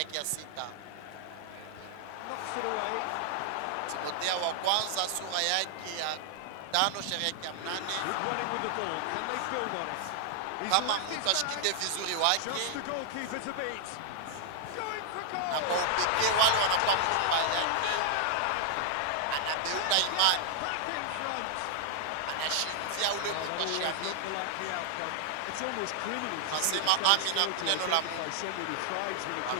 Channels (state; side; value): different; both; correlation -0.01